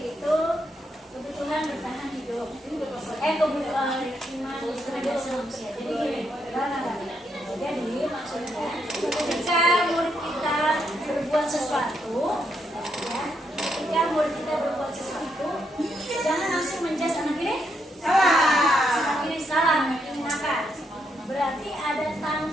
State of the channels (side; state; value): both; normal; correlation 0.78